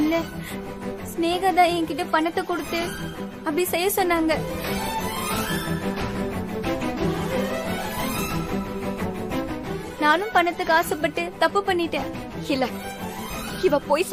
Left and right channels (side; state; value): both; identical; correlation 1.00